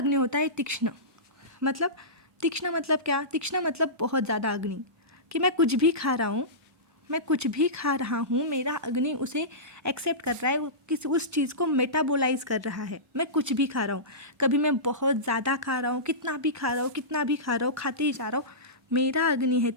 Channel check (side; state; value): both; normal; correlation -0.20